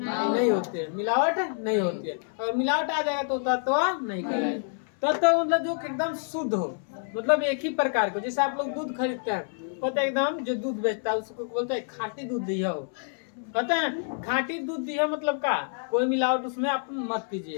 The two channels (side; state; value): right; silent; 60 dB below the other